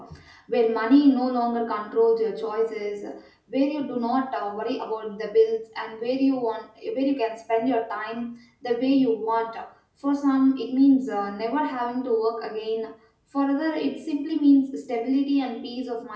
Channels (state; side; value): identical; both; correlation 1.00